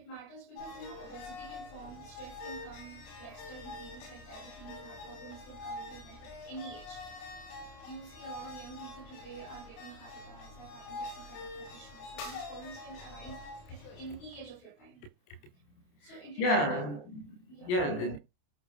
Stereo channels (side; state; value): right; late; 28 ms